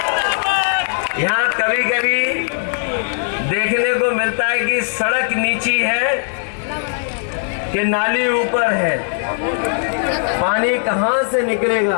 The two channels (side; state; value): right; silent; digital silence